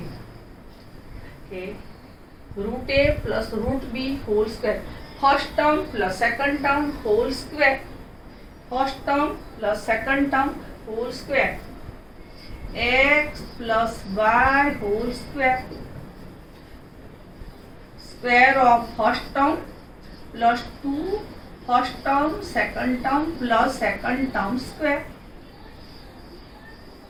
Okay. Root a plus root b whole square. First term plus second term whole square. First term plus second term whole square. X plus y whole square. Square of first term plus 2 first term second term plus second term square.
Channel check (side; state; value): both; identical; correlation 1.00